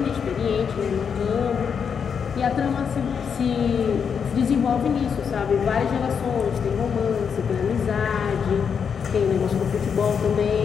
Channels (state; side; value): quieter; right; 6.8 dB